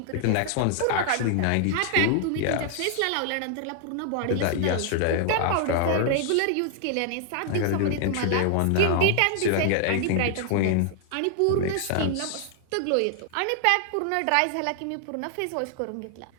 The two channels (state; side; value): different; both; correlation 0.00